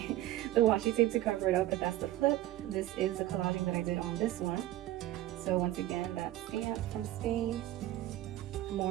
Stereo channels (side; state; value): left; quieter; 14.9 dB